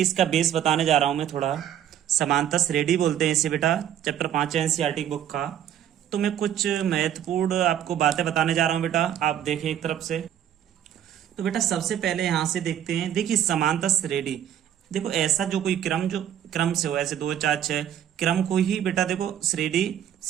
इसका बेस बताने जा रहा हूँ मैं थोड़ा। समांतर श्रेणी बोलते हैं इसे बेटा, चैप्टर 5 है एनसीईआरटी बुक का। तो मैं कुछ महत्वपूर्ण आपको बातें बताने जा रहा हूँ बेटा, आप देखिए एक तरफ से। तो बेटा सबसे पहले यहाँ से देखते हैं, देखिए समांतर श्रेणी। देखो ऐसा जो कोई क्रम जो क्रम से हो, ऐसे 2 4 6 क्रम को ही बेटा देखो श्रेणी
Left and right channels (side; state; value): left; quieter; 10.4 dB